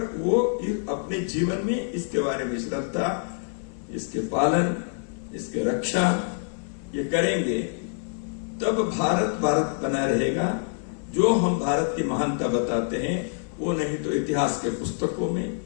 वो अपने जीवन में इसके बारे में श्रद्धा, इसके पालन, इसके रक्षा ये करेंगे, तब भारत भारत बना रहेगा। जो हम भारत की महानता बताते हैं वो नहीं तो इतिहास के पुस्तकों में,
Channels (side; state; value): right; silent; 55 dB below the other